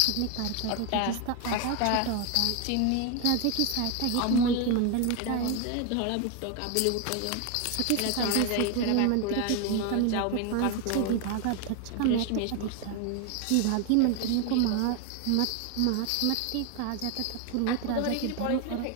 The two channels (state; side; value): different; both; correlation 0.01